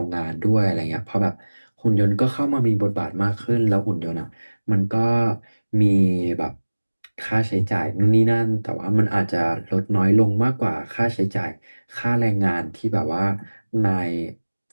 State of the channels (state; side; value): inverted; both; correlation -1.00